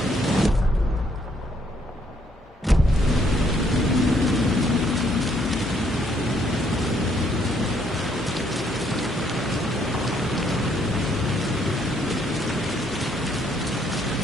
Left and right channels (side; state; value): both; normal; correlation 0.69